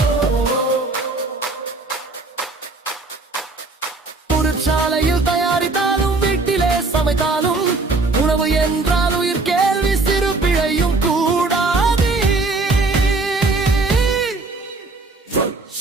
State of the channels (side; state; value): left; quieter; 3.5 dB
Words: சாலையில் தயாரித்தாலும் வீட்டிலே சமைத்தாலும் உணவு என்றால் உயிர் கேள்வி சிறு பிழையும் கூடாது.